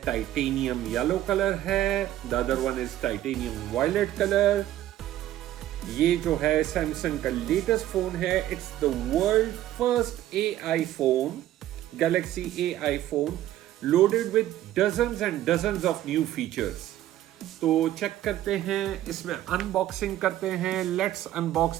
titanium yellow colour है, the other one is titanium violet colour. ये जो है सैमसंग का लेटेस्ट फोन है. It's the world first AI phone, Galaxy AI phone, loaded with dozens and dozens of new features. तो चेक करते हैं, इसमें अनबॉक्सिंग करते हैं. Let's unbox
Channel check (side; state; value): left; quieter; 13.4 dB